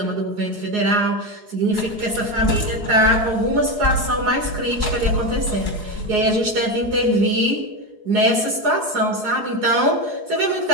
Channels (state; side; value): late; left; 4.7 ms